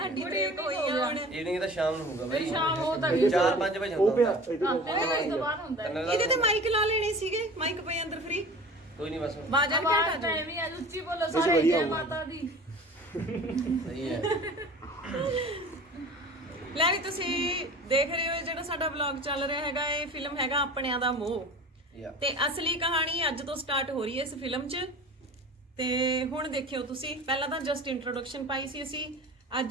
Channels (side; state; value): both; normal; correlation 0.40